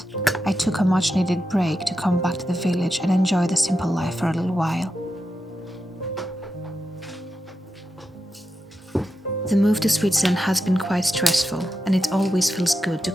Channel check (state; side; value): normal; both; correlation 0.88